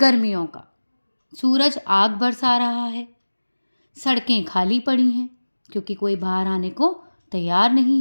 का। सूरज आग बरसा रहा है, सड़कें खाली पड़ी हैं क्योंकि कोई बाहर आने को तैयार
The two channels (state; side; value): inverted; both; correlation -1.00